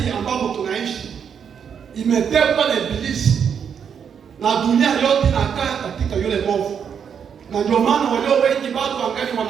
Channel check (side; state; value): left; quieter; 7.5 dB